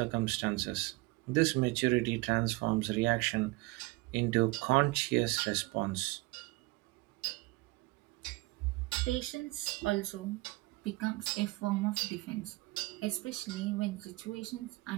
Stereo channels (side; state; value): left; quieter; 22.4 dB